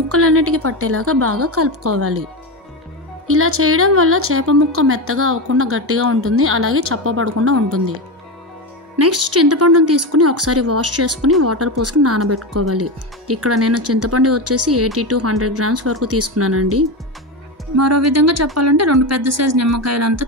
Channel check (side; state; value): both; normal; correlation 0.16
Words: పట్టేలాగా బాగా కలుపుకోవాలి. ఇలా చేయడం వల్ల చేప ముక్క మెత్తగా అవ్వకుండా గట్టిగా ఉంటుంది, అలాగే చప్పబడకుండా ఉంటుంది. నెక్స్ట్ చింతపండును తీసుకుని ఒకసారి వాష్ చేసుకుని వాటర్ పోసుకుని నానబెట్టుకోవాలి. ఇక్కడ నేను చింతపండు వచ్చేసి 80 to 100 grams వరకు తీసుకున్నానండి. మరో విధంగా చెప్పాలంటే 2 పెద్ద సైజు నిమ్మకాయలంతా